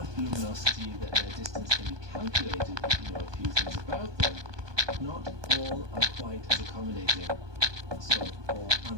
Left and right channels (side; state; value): left; late; 1.2 ms